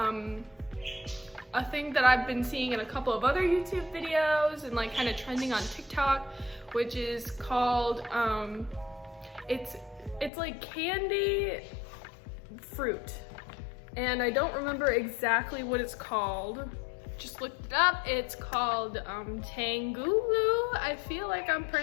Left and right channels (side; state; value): right; drops out; at 10.3 s